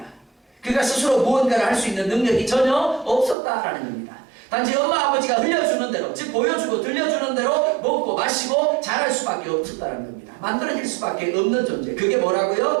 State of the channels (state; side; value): drops out; left; at 3.4 s